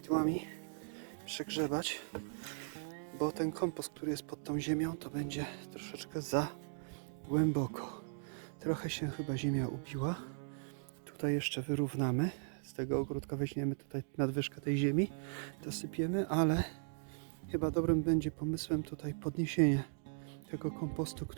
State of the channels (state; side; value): silent; left; digital silence